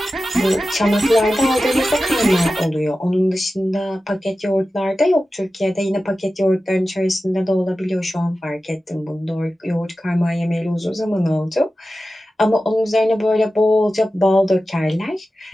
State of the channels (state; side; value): normal; both; correlation 0.94